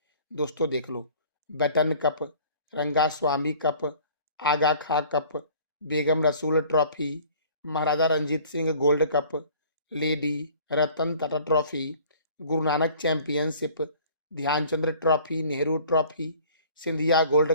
दोस्तों देख लो, Beighton cup, Rangaswamy cup, Agha Khan cup, Begum Rasul trophy, Maharaja Ranjit Singh gold cup, lady Ratan Tata trophy, Guru Nanak championship, Dhyanchandra trophy, Nehru trophy, Scindia gold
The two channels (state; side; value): inverted; both; correlation -0.51